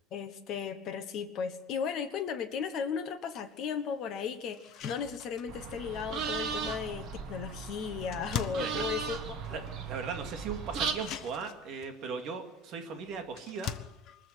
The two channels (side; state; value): both; normal; correlation 0.37